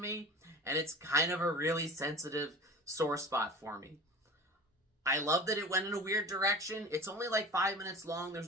And it's kind of a really sensitive sore spot for me. I love that it went in a weird direction. It's only 5 minutes long.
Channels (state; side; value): normal; both; correlation 0.36